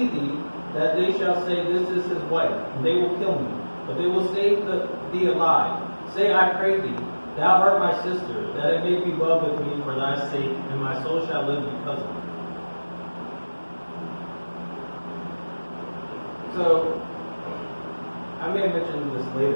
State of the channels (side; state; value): both; inverted; correlation -1.00